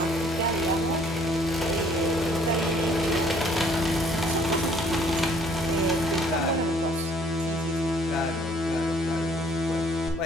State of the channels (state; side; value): normal; both; correlation 0.60